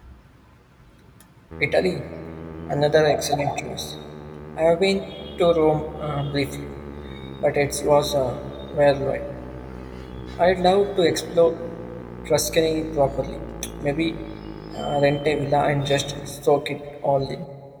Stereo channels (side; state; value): both; identical; correlation 1.00